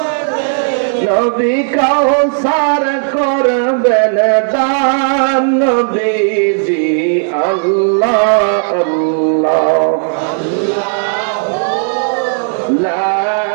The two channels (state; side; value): silent; left; digital silence